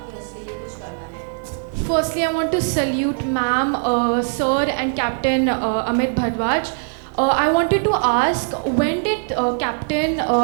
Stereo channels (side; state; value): left; silent; 65 dB below the other